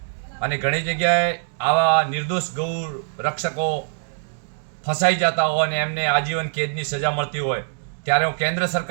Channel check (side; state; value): left; silent; digital silence